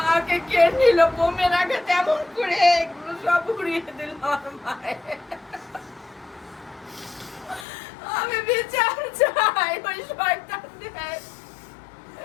কে নিল বোমের আগে, তেমন করে এগুলো সব উড়িয়ে দিল আমার মায়ের। আমি বিচার চাই, ওই শয়তানদের,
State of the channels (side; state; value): right; drops out; at 7.7 s